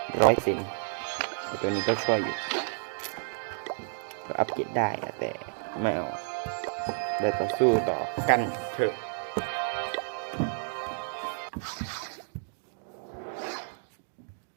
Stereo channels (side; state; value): left; silent; digital silence